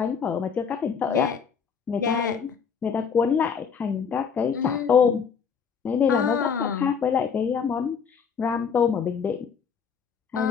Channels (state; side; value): quieter; right; 6.5 dB